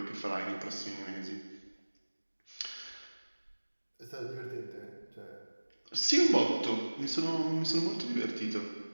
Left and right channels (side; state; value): both; inverted; correlation -1.00